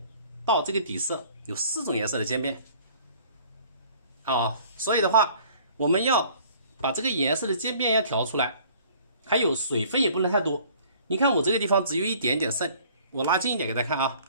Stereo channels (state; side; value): inverted; both; correlation -0.54